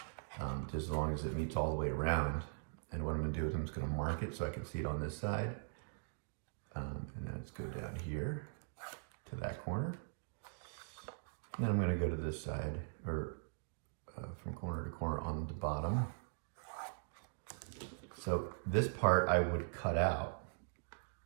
just as long as it meets all the way around. And what I'm gonna do is I'm just gonna mark it so I can see it on this side. And then let's go down here to that corner. And then I'm gonna go to this side, or from corner to corner on the bottom. So this part I would cut out,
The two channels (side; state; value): left; silent; digital silence